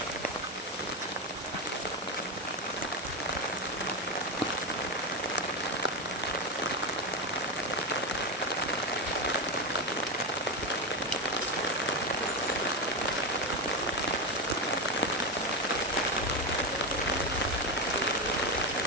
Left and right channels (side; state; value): both; normal; correlation 0.13